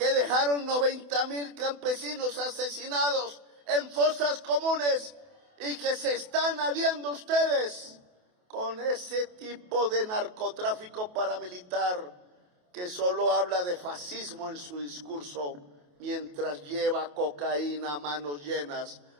dejaron 90.000 campesinos asesinados en fosas comunes, y que se están aliando ustedes con ese tipo de narcotráfico paramilitar que solo habla de fascismo en su discurso, mientras lleva cocaína a manos llenas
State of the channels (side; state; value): left; late; 28 ms